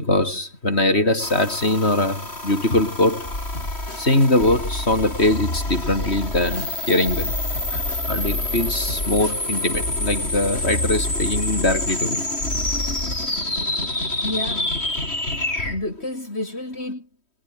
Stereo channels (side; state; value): right; late; 3.1 ms